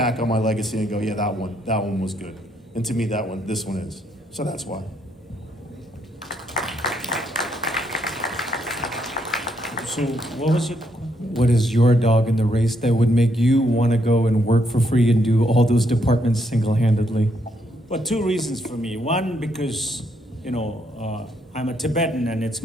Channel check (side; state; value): both; normal; correlation 0.75